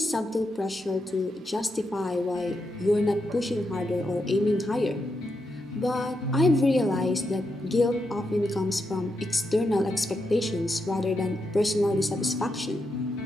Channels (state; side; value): normal; both; correlation 0.84